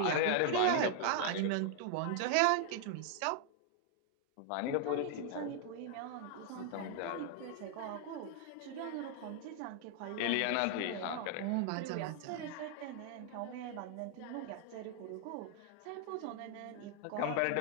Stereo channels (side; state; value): both; different; correlation 0.00